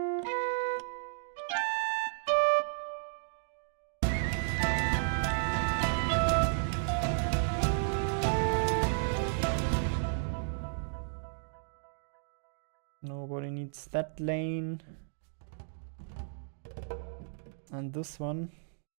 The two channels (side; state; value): left; silent; digital silence